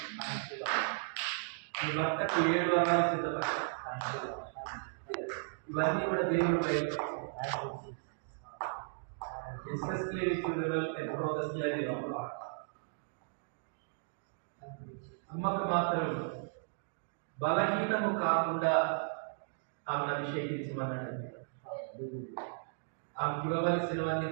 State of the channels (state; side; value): silent; left; digital silence